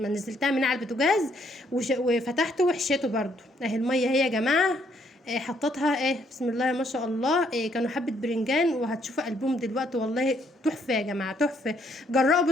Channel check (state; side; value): normal; both; correlation 0.69